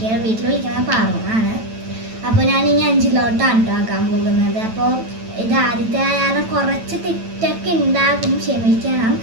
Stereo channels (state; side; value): late; left; 9.0 ms